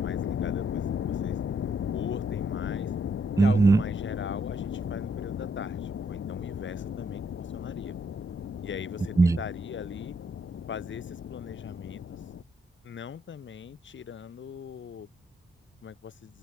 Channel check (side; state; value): both; normal; correlation 0.73